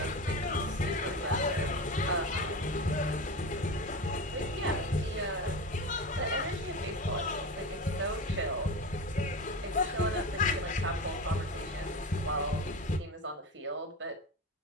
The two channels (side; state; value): both; normal; correlation 0.25